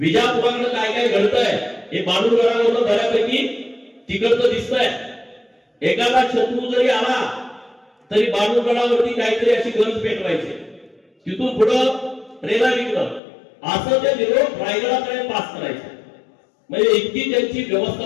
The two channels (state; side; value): drops out; right; at 13.2 s